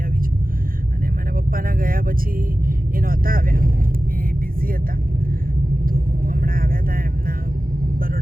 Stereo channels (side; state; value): left; late; 0.42 ms